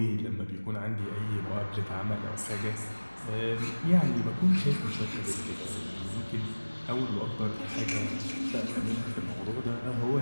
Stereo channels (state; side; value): inverted; both; correlation -1.00